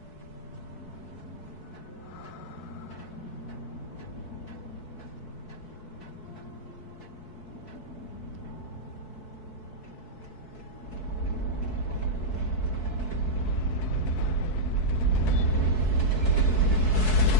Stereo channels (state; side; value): late; right; 4.6 ms